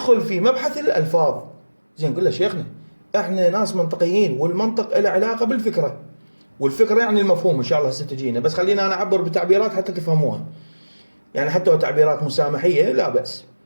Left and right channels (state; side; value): inverted; both; correlation -1.00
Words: في مبحث الألفاظ. زين نقول له شيخنا احنا ناس منطقيين، والمنطق له علاقة بالفكرة، والفكرة يعني المفهوم إن شاء الله ستجينا، بس خلينا أنا أعبر بتعبيرات حتى تفهموها، يعني حتى لو تعبيرات مسامحية لا بأس.